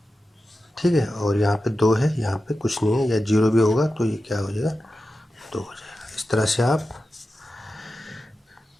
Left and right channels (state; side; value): normal; both; correlation 0.92